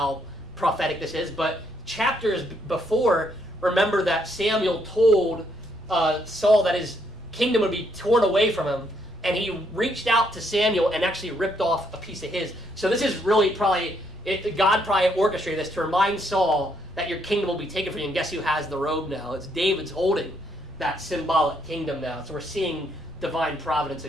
prophetic this is, but chapters before, remember that Samuel told Saul that his kingdom would be torn away from him, and he reached out to Samuel and actually ripped off a piece of his. So this is really God probably orchestrated this to remind Saul that your kingdom will be taken from you, and guess who has the robe now? It's David's holding that symbolic kingdom now. So we're seeing divine providence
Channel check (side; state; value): both; normal; correlation 0.73